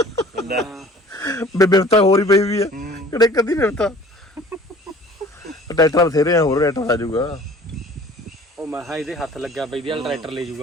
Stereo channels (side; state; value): both; normal; correlation 0.49